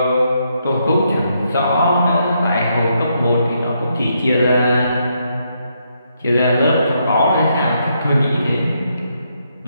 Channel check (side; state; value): both; inverted; correlation -0.77